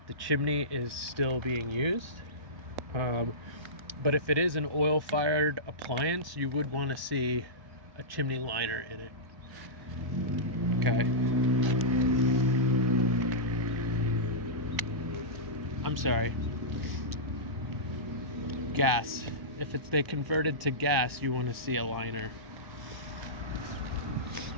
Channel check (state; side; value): late; left; 1.1 ms